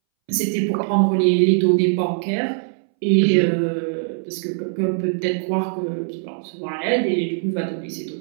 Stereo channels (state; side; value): silent; left; 63 dB below the other